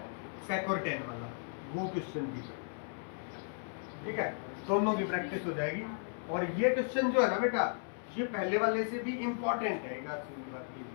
sec और tan वाला, वो क्वेश्चन भी करो, ठीक है, दोनों की प्रैक्टिस हो जाएगी। और ये क्वेश्चन जो है ना बेटा, ये पहले वाले से भी इम्पोर्टेंट है, सीधी बात ये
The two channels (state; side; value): silent; right; 54 dB below the other